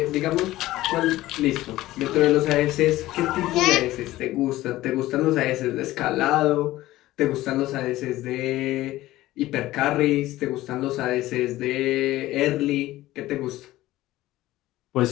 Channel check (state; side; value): quieter; right; 16.4 dB